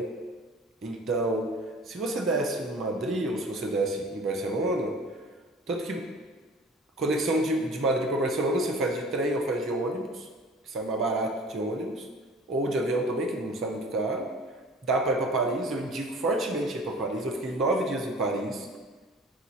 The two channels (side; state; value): both; normal; correlation 0.44